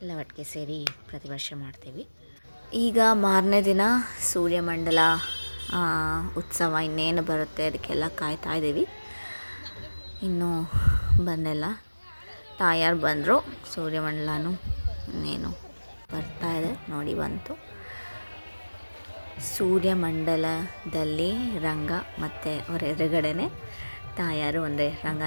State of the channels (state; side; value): inverted; both; correlation -1.00